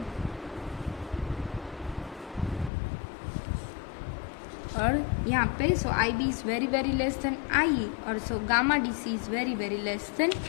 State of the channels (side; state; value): right; drops out; at 2.7 s